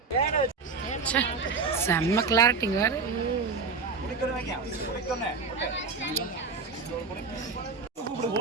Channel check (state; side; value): quieter; left; 4.8 dB